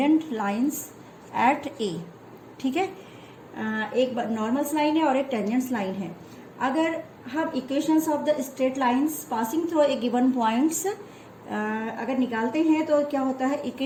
लाइंस एट ए, ठीक है। एक नॉर्मल लाइन है और एक टेंजेंट्स लाइन है। अगर हम equations of the straight lines passing through a given points अगर निकालते हैं तो क्या होता है,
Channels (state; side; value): identical; both; correlation 1.00